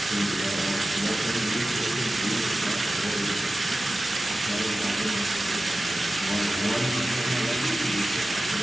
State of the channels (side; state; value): both; normal; correlation 0.95